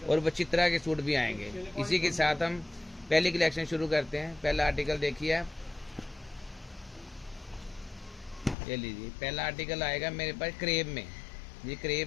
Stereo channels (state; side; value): drops out; right; at 8.6 s